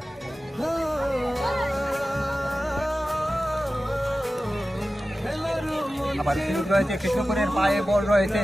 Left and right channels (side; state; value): both; normal; correlation 0.95